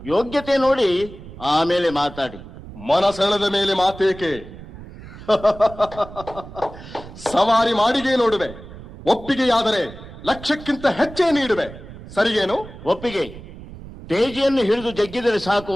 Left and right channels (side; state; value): right; noise; rumble, 15 dB below the sound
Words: ಯೋಗ್ಯತೆ ನೋಡಿ ಆಮೇಲೆ ಮಾತಾಡಿ. ಮನಸೆಳೆದ ಮೇಲೆ ಮಾತೇಕೆ? ಸವಾರಿ ಮಾಡಿಗೆ ನೋಡುವೆ. ಒಪ್ಪಿಗೆಯಾದರೆ ಲಕ್ಷಕ್ಕಿಂತ ಹೆಚ್ಚೇ ನೀಡುವೆ. ಸರಿಗೇನು? ಒಪ್ಪಿಗೆ. ತೇಜಿಯನ್ನು ಹಿಡಿದು ಜಗ್ಗಿದರೆ ಸಾಕು,